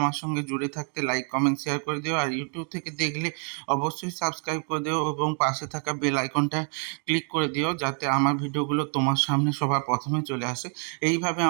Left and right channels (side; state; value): left; quieter; 38.9 dB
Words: সঙ্গে জুড়ে থাকতে লাইক কমেন্ট শেয়ার করে দিও, আর ইউটিউব থেকে দেখলে অবশ্যই সাবস্ক্রাইব করে দিও এবং পাশে থাকা বেল আইকনটা ক্লিক করে দিও, যাতে আমার ভিডিওগুলো তোমার সামনে সবার প্রথমে চলে আসে। এইভাবে